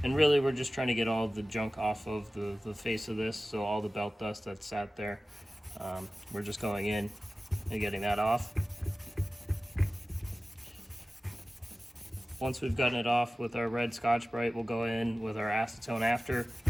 And really, we're just trying to get all the junk off of the face of this, so all the belt dust that's sat there. We're just going in and getting that off. Once we've gotten it off with our red Scotch-Brite, we'll go in with our acetone after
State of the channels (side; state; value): both; normal; correlation 0.96